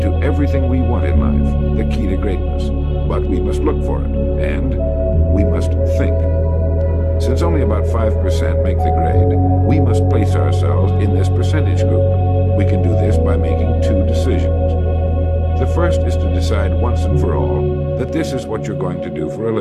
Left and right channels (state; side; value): identical; both; correlation 1.00